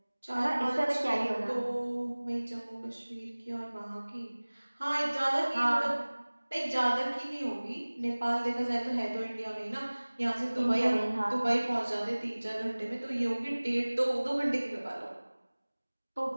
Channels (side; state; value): both; inverted; correlation -1.00